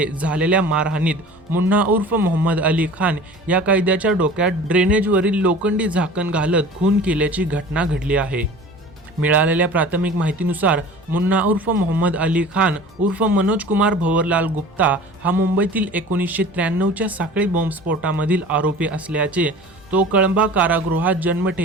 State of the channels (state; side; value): normal; both; correlation 0.41